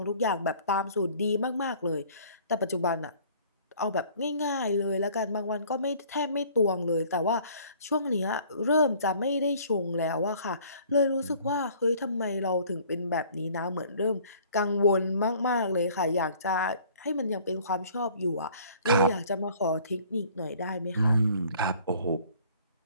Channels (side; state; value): both; inverted; correlation -0.54